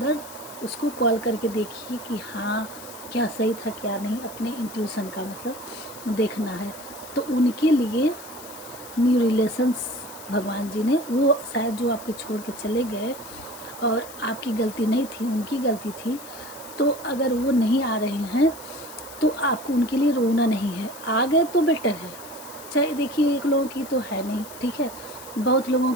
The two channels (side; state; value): left; noise; hiss, 16 dB below the sound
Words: उसको कॉल करके देखिए कि हाँ क्या सही था क्या नहीं। अपने इंट्यूशन का मतलब देखना है। तो उनके लिए न्यू रिलेशंस भगवान जी ने, वो शायद जो आपके छोड़ के चले गए और आपकी गलती नहीं थी, उनकी गलती थी, तो अगर वो नहीं आ रहे हैं तो आपको उनके लिए रोना नहीं है। आ गए तो बेटर है। चाहे देखिए, एक लोगों की तो है नहीं, ठीक है, बहुत लोगों